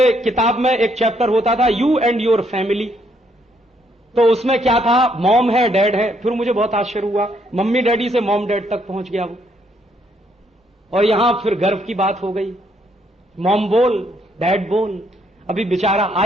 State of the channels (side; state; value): both; normal; correlation 0.72